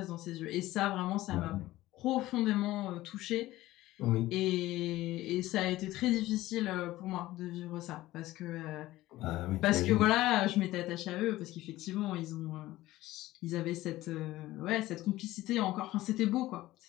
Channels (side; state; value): right; quieter; 16.7 dB